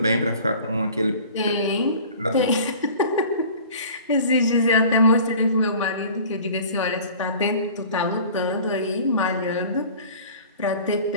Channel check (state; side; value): inverted; both; correlation -0.44